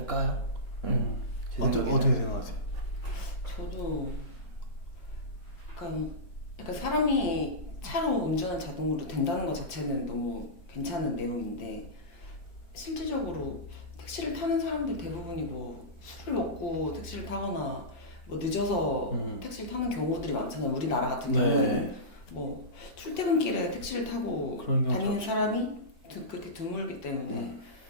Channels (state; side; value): late; right; 1.8 ms